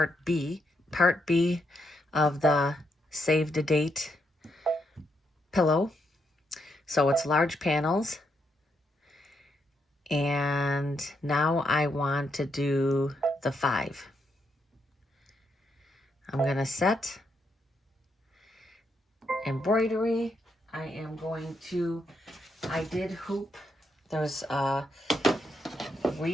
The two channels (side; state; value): both; normal; correlation 0.79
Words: B of the Save the Date pillow. So it's large panels. And now I want to do the 5. I'm going to set embroidery. I am going to, I did hoop. There's